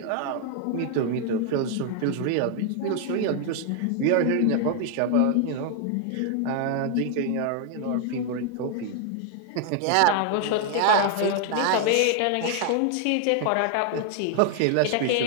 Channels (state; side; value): different; both; correlation 0.00